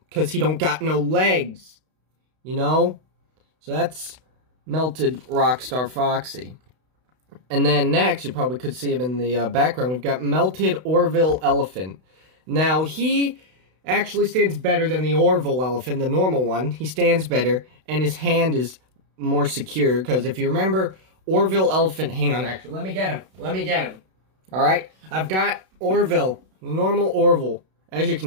because he don't got no legs, you know? So that's Melted Rockstar Foxy. And then next, you probably could see him in the background, we've got Melted Orville Elephant. Now, he actually stands better than the Orville Elephant, the normal one. He stands better, and his hand is more secure, because if you remember, Orville Elephant, hang on, actually, let me get him. Alright, I've got Orville, normal Orville. As you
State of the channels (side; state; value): left; late; 32 ms